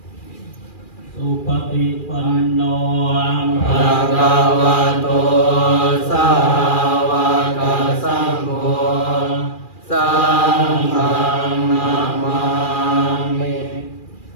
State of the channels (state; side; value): late; right; 2.4 ms